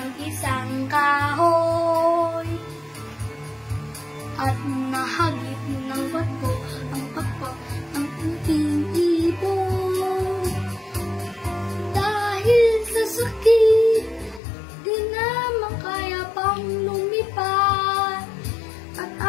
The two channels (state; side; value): drops out; right; at 14.4 s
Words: isang kahoy. At nahagip ng bato ang pakpak ng puting ibon. Dahil sa sakit, di naman kaya pang lumipad. At